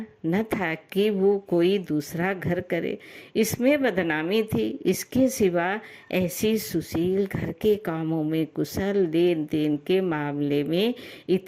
न था कि वो कोई दूसरा घर करे, इसमें बदनामी थी। इसके सिवा ऐसी सुशील, घर के कामों में कुशल, लेन देन के मामले में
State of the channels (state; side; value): identical; both; correlation 1.00